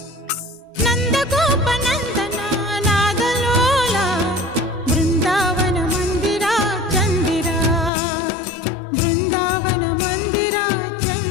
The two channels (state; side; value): drops out; right; at 7.9 s